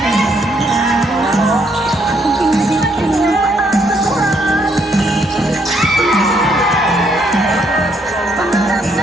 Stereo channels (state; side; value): normal; both; correlation 0.72